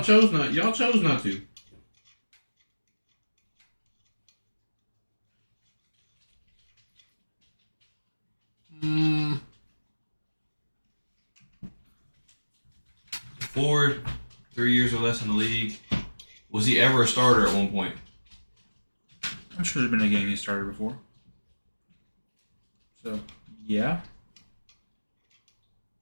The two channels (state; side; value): inverted; both; correlation -1.00